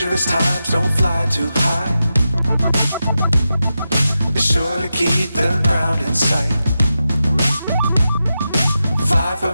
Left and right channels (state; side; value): inverted; both; correlation -0.90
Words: times, don't fly too high. Be sure to keep the ground in sight. Fly